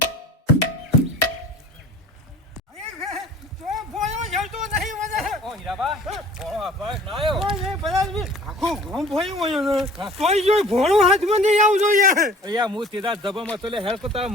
ભોળો હાથમાં નહીં આવજો યાર હું સીધા જબરમાં તો હેલ્પ કરતા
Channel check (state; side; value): normal; both; correlation 0.48